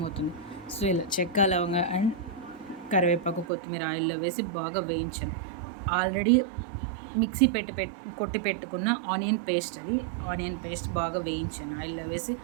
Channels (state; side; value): drops out; left; at 3.5 s